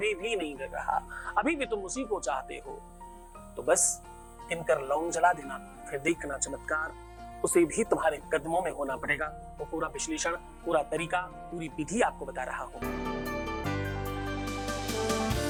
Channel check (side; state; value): both; identical; correlation 1.00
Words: भी नहीं गिर रहा, अभी भी तुम उसी को चाहते हो, तो बस गिनकर लौंग जला देना, फिर देखना चमत्कार, उसे भी तुम्हारे कदमों में होना पड़ेगा। वो पूरा विश्लेषण, पूरा तरीका, पूरी विधि आपको बता रहा हूं।